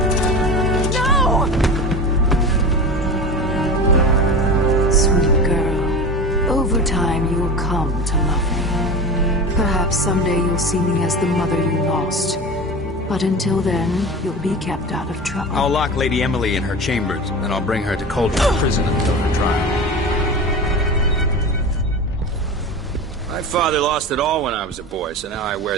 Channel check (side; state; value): both; normal; correlation 0.30